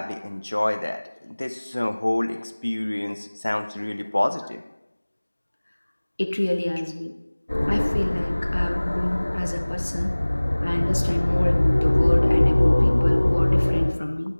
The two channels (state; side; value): inverted; both; correlation -1.00